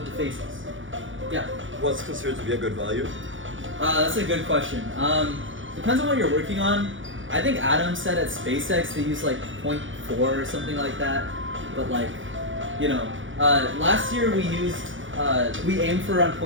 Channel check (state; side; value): late; left; 0.56 ms